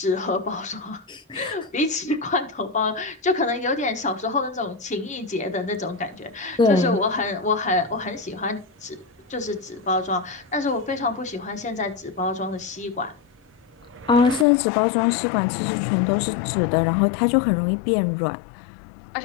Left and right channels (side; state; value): right; drops out; at 14.5 s